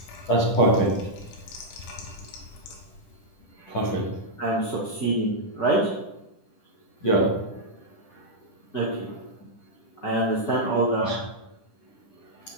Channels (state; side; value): late; right; 10 ms